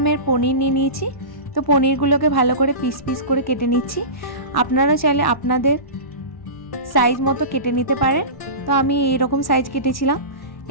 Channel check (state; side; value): late; right; 1.1 ms